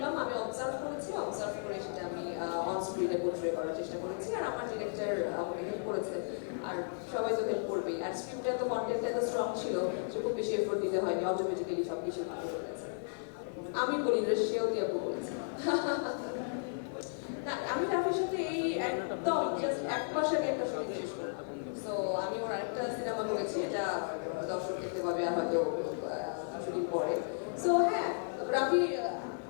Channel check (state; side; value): silent; right; digital silence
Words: আমি অবজার্ভ করে সেটা আমি অন স্ক্রিনে পোর্ট্রে করার চেষ্টা করেছি, আর আমার ডিরেক্টর আমাকে হেল্প করেছে, আর সবাই তো হেল্প করবেই। আর স্ক্রিপ্টটা তো কন্টেন্টটা তো স্ট্রং ছিল, যে খুব বেশি এফোর্ট দিতে হয়নি, অটোমেটিক্যালি সব কিছু ভালো হয়ে গেছে। আমি বলি না, সেও দিয়ে বলেছে। না, আমি রাফির সাথে এই একদম এক মাস আগে একটা শুটিং শেষ করি। সো আমি ওর একটা সিনেমা করেছি, এটা দর্শক দেখতে পাবে আর হয়তো শুটিং পরে। সো হ্যাঁ, রাফি